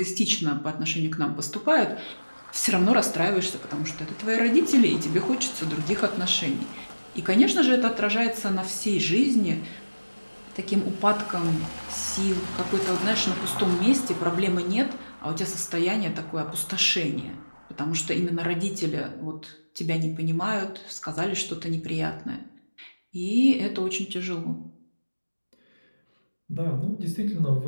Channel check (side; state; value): both; inverted; correlation -1.00